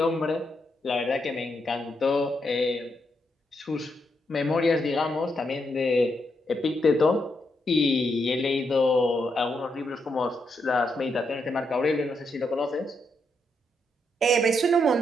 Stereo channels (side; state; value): both; normal; correlation 0.80